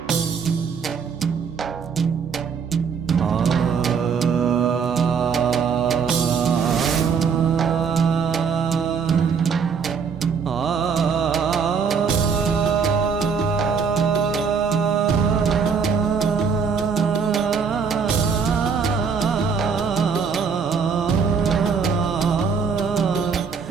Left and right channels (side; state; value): left; quieter; 6.0 dB